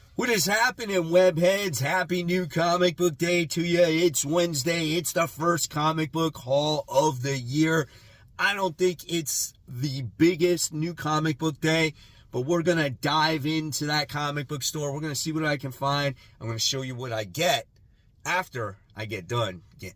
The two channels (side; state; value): both; identical; correlation 1.00